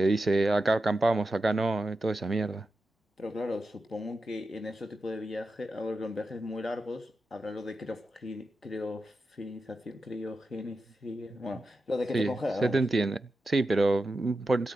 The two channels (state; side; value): normal; both; correlation 0.90